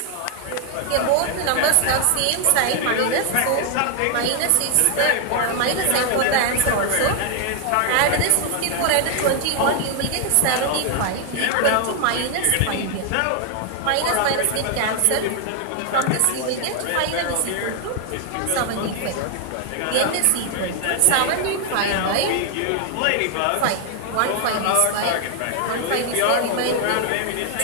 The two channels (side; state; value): both; different; correlation 0.00